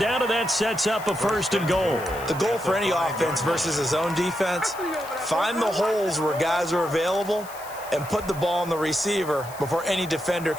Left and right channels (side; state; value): left; noise; hiss, 17 dB below the sound